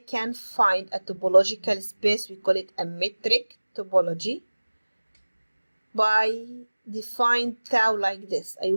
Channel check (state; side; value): inverted; both; correlation -1.00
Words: can find a topological space, we call it a metric topology, by define tau like this. I